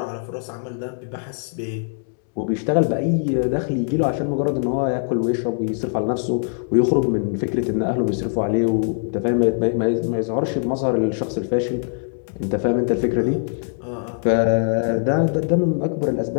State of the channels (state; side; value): silent; right; digital silence